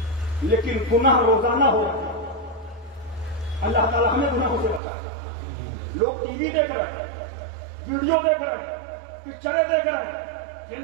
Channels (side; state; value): left; drops out; at 4.8 s